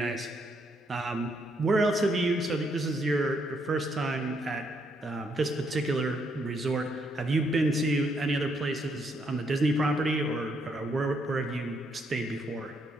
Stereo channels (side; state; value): both; normal; correlation 0.74